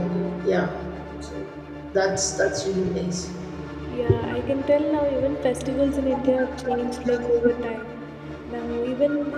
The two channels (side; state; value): both; identical; correlation 1.00